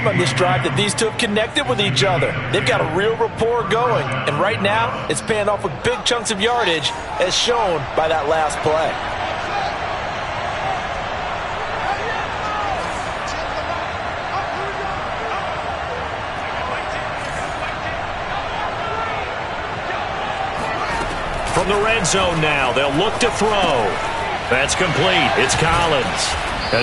on this drive that these two have connected with each other. They've got a real rapport going, and right now it's paying off with big chunks of yardage, as shown by that last play. From the red zone now, they'll look to throw. That's complete. It's Collins.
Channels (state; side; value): identical; both; correlation 1.00